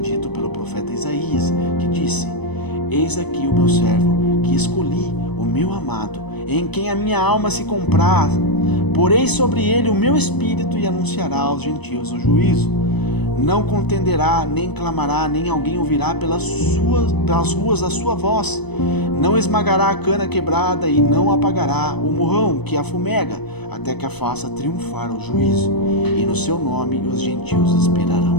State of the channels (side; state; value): right; late; 0.99 ms